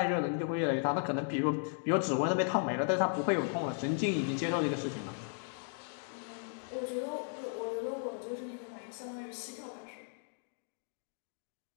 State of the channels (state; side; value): silent; right; 54 dB below the other